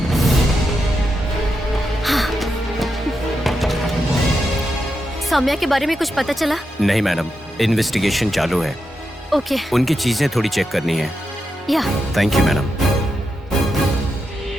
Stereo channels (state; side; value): normal; both; correlation 0.86